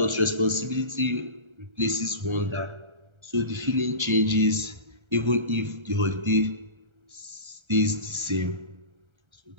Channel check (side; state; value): left; late; 1.3 ms